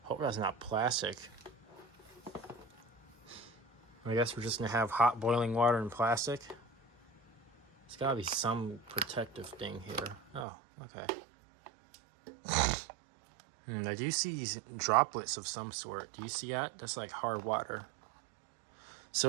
Hope that's not plastic. I guess we're just gonna have hot boiling water and plastic. There's gotta be some protective thing here. Oh, okay. I do see these droplets of some sort. Do you see that? That's like hard water.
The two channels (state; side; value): drops out; left; at 10.5 s